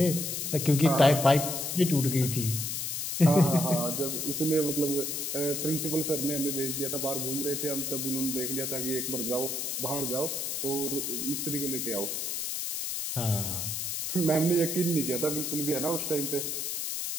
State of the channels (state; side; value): noise; left; hiss, 2 dB below the sound